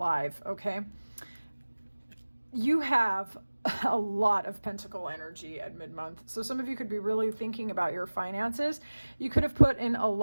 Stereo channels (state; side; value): inverted; both; correlation -1.00